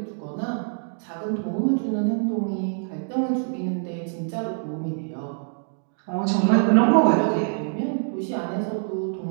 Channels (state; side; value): silent; left; digital silence